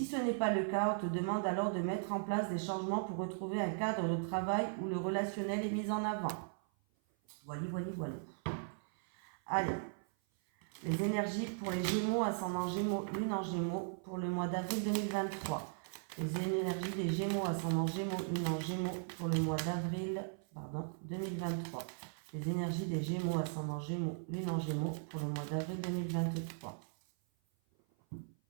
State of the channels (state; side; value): silent; left; 53 dB below the other